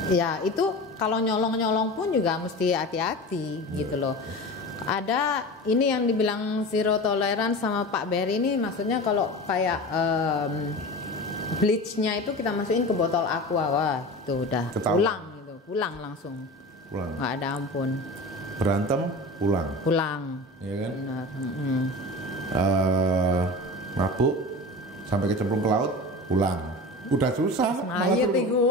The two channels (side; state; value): both; normal; correlation 0.32